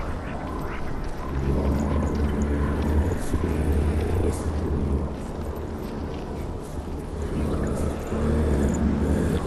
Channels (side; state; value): both; identical; correlation 1.00